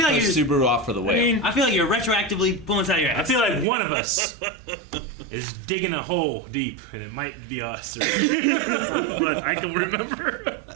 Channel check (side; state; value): left; drops out; at 3.7 s